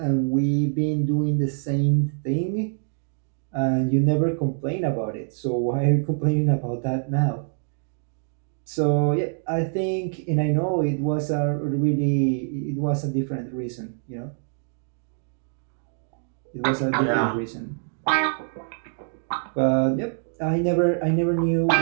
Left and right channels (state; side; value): silent; left; 62 dB below the other